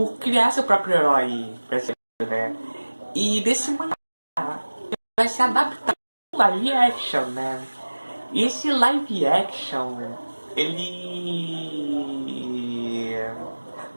criar seu próprio herói brasileiro, né? E desse mangá vai se adaptar em live action, né? E esse live action, ele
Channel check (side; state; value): both; inverted; correlation -1.00